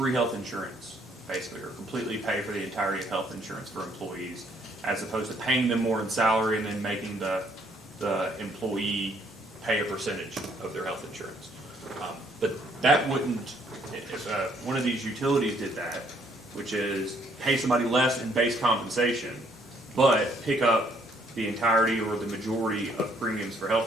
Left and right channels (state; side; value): normal; both; correlation 0.66